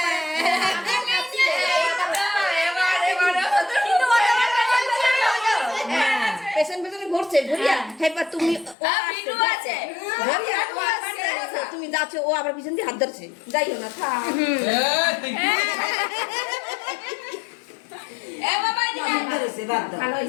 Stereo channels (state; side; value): drops out; right; at 8.8 s